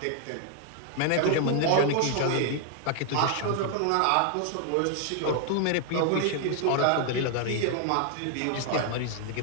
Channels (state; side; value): different; both; correlation 0.00